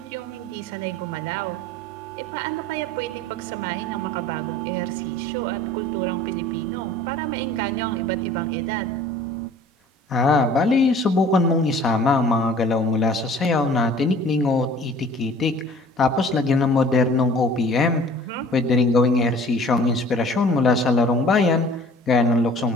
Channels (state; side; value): normal; both; correlation 0.48